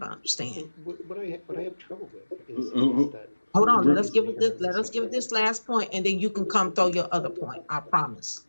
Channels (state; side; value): inverted; both; correlation -1.00